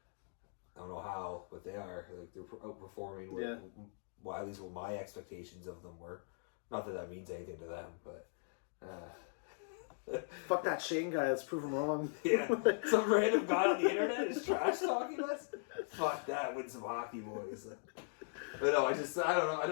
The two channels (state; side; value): silent; right; digital silence